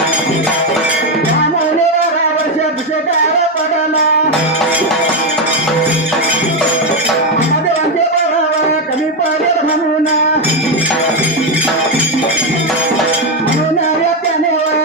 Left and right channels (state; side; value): normal; both; correlation 0.07